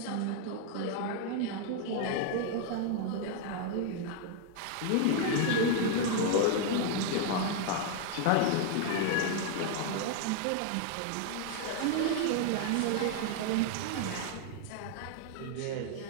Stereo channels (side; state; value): both; different; correlation 0.00